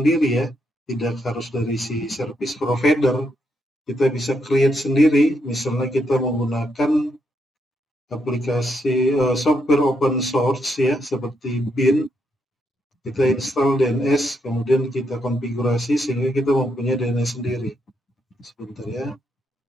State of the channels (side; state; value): both; normal; correlation 0.79